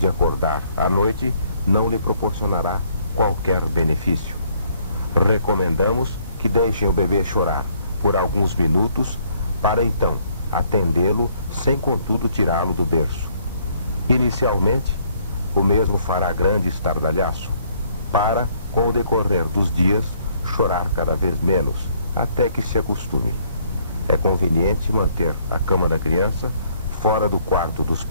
acordar à noite não lhe proporcionará qualquer benefício. Recomendamos que deixem o bebê chorar por alguns minutos para então atendê-lo sem contudo tirá-lo do berço. Inicialmente, o mesmo fará grande estardalhaço para, com o decorrer dos dias, chorar cada vez menos, até que se acostume. É conveniente manter a cama da criança fora do quarto dos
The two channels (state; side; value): inverted; both; correlation -0.66